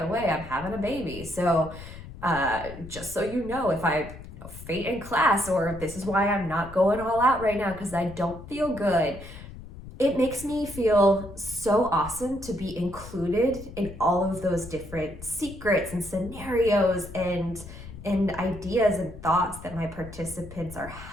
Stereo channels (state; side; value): noise; left; rumble, 14 dB below the sound